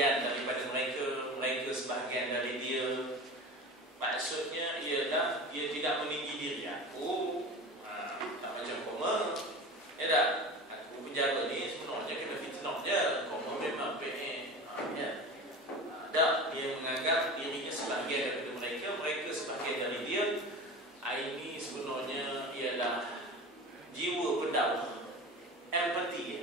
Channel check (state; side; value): normal; both; correlation 0.32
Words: daripada mereka, mereka sebahagian dari dia. Maksudnya ialah dia tidak meninggi diri. Aku tak macam koma. Ya tak? Aku penjara ni sebenarnya kena fitnah je. Koma memang PN. Ya. Tak, dia menganggap dirinya sebahagian daripada mereka, mereka sebahagian dari dia. Ini sebenarnya ialah jiwa pendakwah, empathy